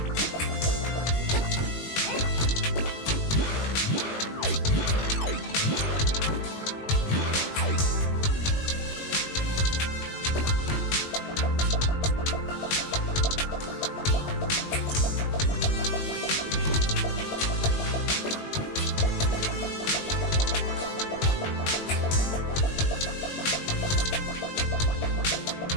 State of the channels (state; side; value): late; right; 20 ms